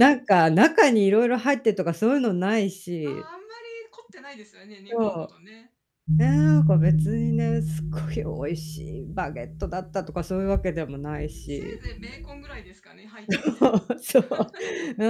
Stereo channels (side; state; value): both; identical; correlation 1.00